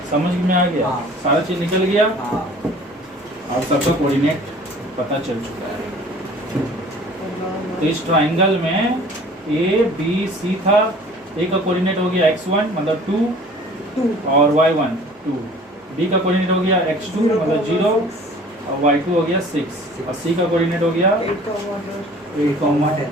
समझ में आ गया, सारा चीज निकल गया और सबका कोऑर्डिनेट पता चल चुका है। तो इस ट्राइंगल में ABC था, A का कोऑर्डिनेट हो गया x1 मतलब 2 और y1 2, B का कोऑर्डिनेट हो गया x2 मतलब 0 और y2 हो गया 6, और C का कोऑर्डिनेट हो गया 8,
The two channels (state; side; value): normal; both; correlation 0.48